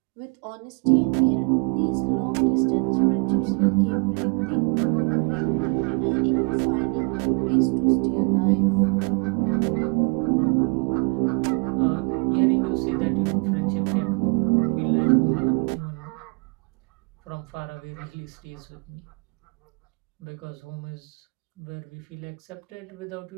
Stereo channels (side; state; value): left; quieter; 35.6 dB